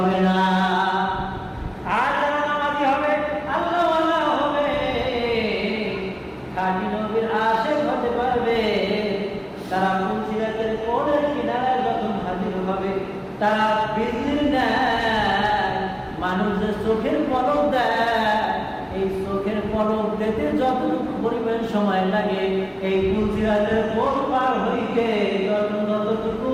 না। আর যারা নামাজি হবে, আল্লাহওয়ালা হবে, খাঁটি নবীর আশিক হতে পারবে, তারা পুলসিরাতের কোলের কিনারায় যখন হাজির হবে, তারা বিজলির দেয়, মানুষ যে চোখের পলক দেয়, এই চোখের পলক দিতে যতটুকু পরিমাণ সময় লাগে, এই পুলসিরাতের কোল পার হইতে ততটুকু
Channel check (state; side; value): identical; both; correlation 1.00